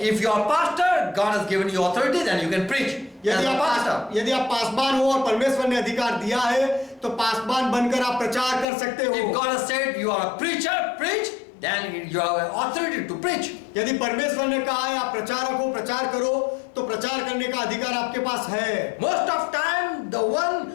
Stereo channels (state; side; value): drops out; right; at 8.7 s